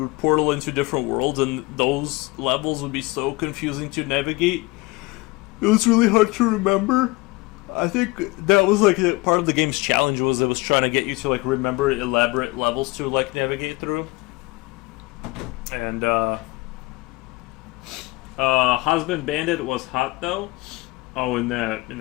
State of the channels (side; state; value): right; quieter; 22.8 dB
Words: portal into different worlds, and those levels would be so confusing to navigate. It was really hard to remember. I think that was like part of the game's challenge, was it was trying to get you to like remember elaborate levels to like navigate through. And Husband Bandit was hot though. Oh, in